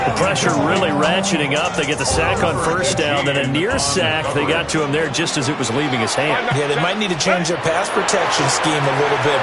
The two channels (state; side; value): identical; both; correlation 1.00